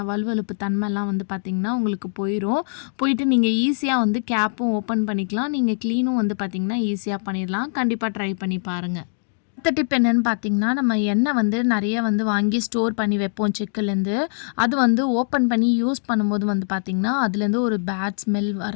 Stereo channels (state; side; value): silent; right; digital silence